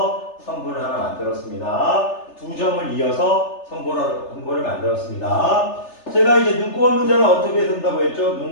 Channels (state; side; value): late; right; 3.3 ms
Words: 선분을 하나 만들었습니다. 두 점을 이어서 선분을 만들었습니다. 제가 이제 눈곱 없는 자는 어떻게 쓴다고 했죠?